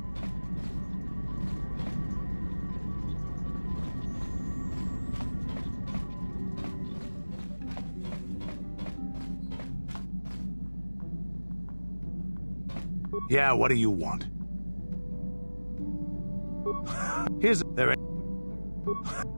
Yeah, what do you want? Here's there.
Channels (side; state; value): both; inverted; correlation -1.00